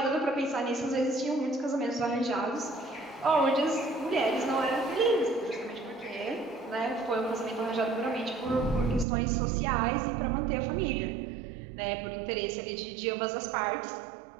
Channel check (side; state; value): left; drops out; at 9.1 s